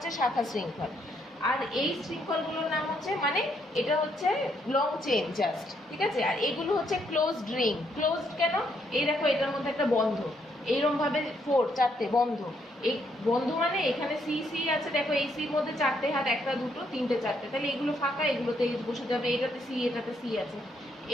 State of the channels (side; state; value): both; normal; correlation 0.74